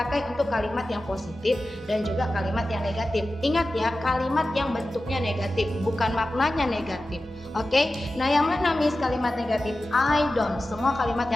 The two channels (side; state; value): both; normal; correlation 0.94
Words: untuk kalimat yang positif dan juga kalimat yang negatif. Ingat ya, kalimat yang bentuknya negatif, bukan maknanya negatif. Oke? Nah, yang mana Miss kalimat negatif? I don't. Semua kalimat